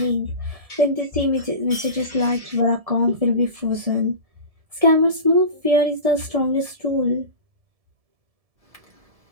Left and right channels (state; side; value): late; left; 1.7 ms